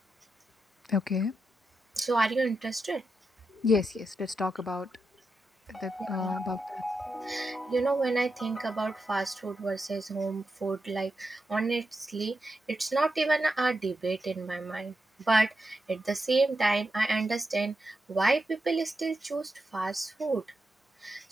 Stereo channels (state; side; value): normal; both; correlation 0.87